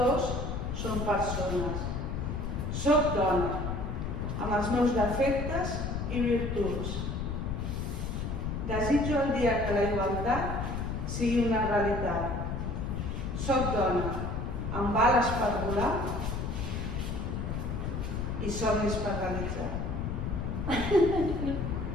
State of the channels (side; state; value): left; noise; rumble, 3 dB below the sound